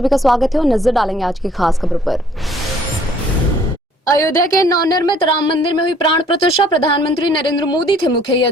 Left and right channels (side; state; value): both; normal; correlation 0.59